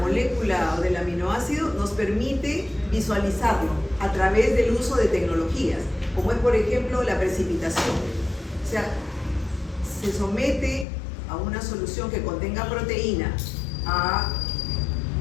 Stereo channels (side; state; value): right; drops out; at 10.9 s